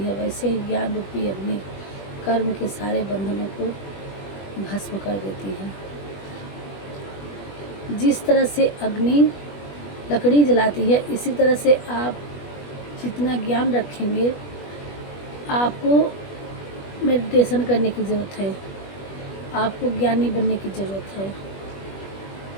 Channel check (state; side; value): late; right; 21 ms